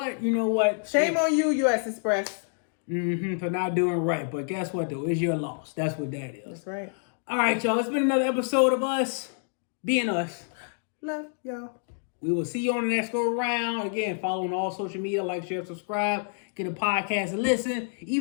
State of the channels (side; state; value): right; silent; 60 dB below the other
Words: you know what? Shame on you, U.S. Express. For not doing right. But guess what, though? It's your loss. That's what that is. That's right. All right, y'all. It's been another episode of us being us. Love y'all. We will see you on the next go around. Again, follow on all social media, like, share, subscribe, get a podcast and listen.